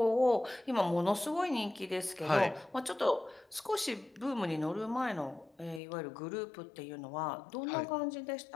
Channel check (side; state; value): right; drops out; at 5.8 s